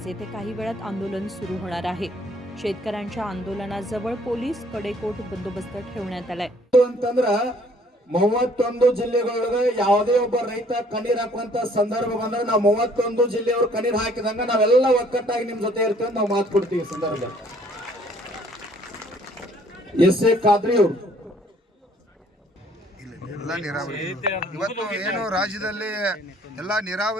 येथे काही वेळात आंदोलन सुरू होणार आहे. शेतकऱ्यांच्या आंदोलनाजवळ पोलीस कडेकोट बंदोबस्त ठेवण्यात आलाय. 31 ಜಿಲ್ಲೆಗಳೊಳಗೆ ಯಾವುದೇ ಒಬ್ಬ ರೈತ ಕಣ್ಣೀರ್ ಹಾಕುವಂತ ಸಂದರ್ಭ ಬಂದಾಗ ನಾವು 31 ಜಿಲ್ಲೆಯವರು ಕಣ್ಣೀರ್ ಹಾಕಿದಂಗ ನಾವೆಲ್ಲ ಒಕ್ಕಟ್ಟಾಗಿ ನಿಮ್ ಜೊತೆ ಇರ್ತೀವಿ ನಾವು ಮಾತು ಕೊಡ್ತೀವಿ. ಸಂದರ್ಭ ಎಸ್.ಎ. ಖಾದ್ರಿ ಅವರು ಎಲ್ಲ ನೀರಾವರಿ ಇವತ್ತು ಏನು ರಾಜ್ಯದಲ್ಲಿ ಎಲ್ಲ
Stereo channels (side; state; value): both; normal; correlation 0.60